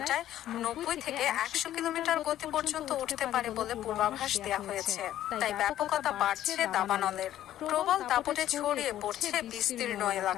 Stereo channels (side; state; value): right; quieter; 12.5 dB